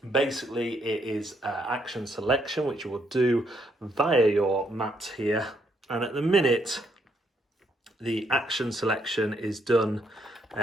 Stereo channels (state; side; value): normal; both; correlation 0.74